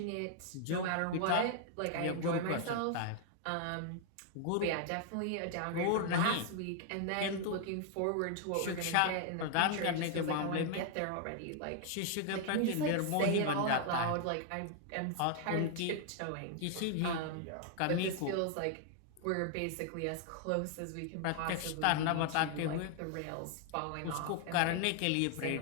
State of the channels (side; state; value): both; different; correlation 0.00